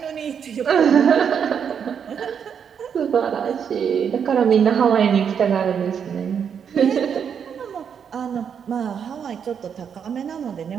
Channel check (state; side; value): quieter; left; 7.5 dB